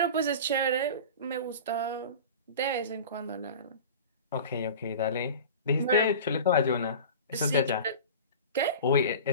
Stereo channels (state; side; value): inverted; both; correlation -0.35